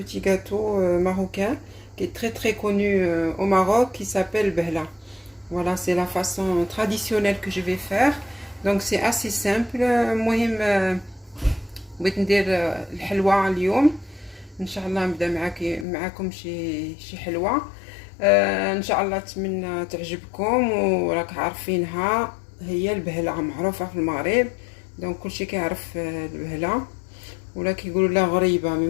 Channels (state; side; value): drops out; right; at 15.9 s